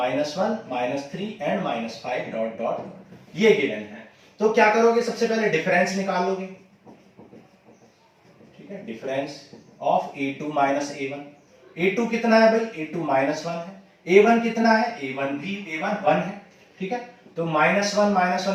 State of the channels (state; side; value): identical; both; correlation 1.00